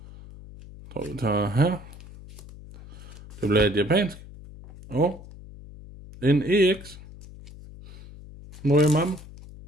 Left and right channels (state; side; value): noise; left; hum, 17 dB below the sound